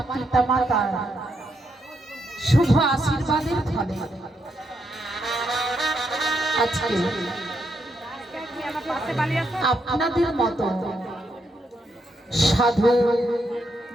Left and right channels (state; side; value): normal; both; correlation 0.79